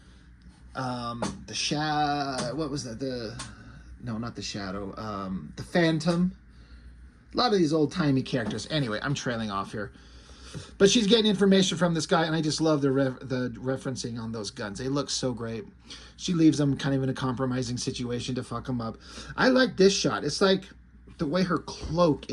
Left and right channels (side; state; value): both; identical; correlation 1.00